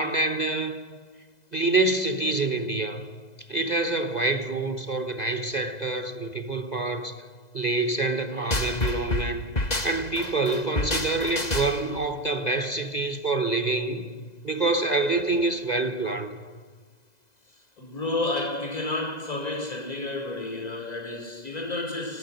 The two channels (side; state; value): right; late; 2.0 ms